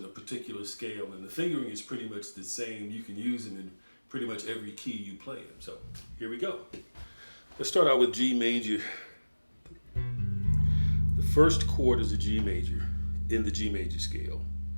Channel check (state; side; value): inverted; both; correlation -1.00